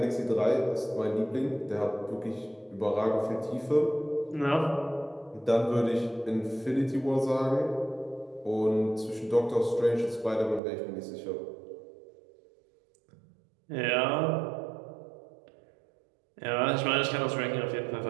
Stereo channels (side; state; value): left; drops out; at 10.6 s